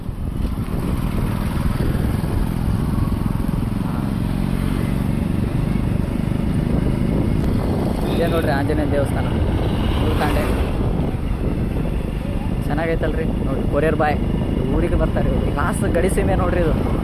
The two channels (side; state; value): both; identical; correlation 1.00